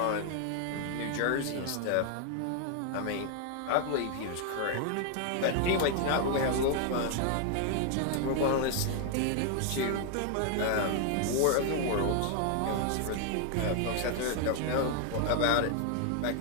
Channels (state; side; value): different; both; correlation 0.00